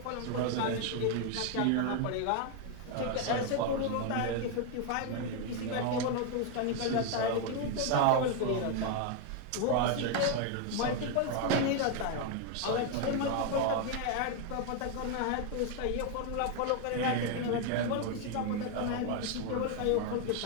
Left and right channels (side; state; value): both; different; correlation 0.01